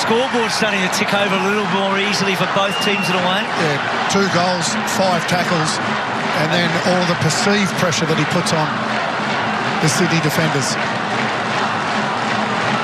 starting to tick over a little more easily for both teams in a way. Yeah, 2 goals, 5 tackles, and then all the perceived pressure that he puts on. the Sydney defenders.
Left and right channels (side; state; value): both; identical; correlation 1.00